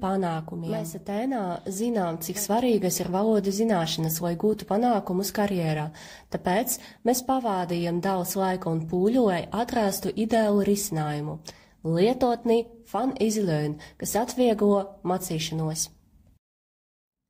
Mēs Atēnā zinām, cik svarīgas ir valodu zināšanas, lai gūtu panākumus karjerā. Tāpēc mēs pavādījām daudz laika un pūļu, lai atrastu ideālu risinājumu. Lietotni Fun Easy Learn, kas atvieglo mācīšanos.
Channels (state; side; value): identical; both; correlation 1.00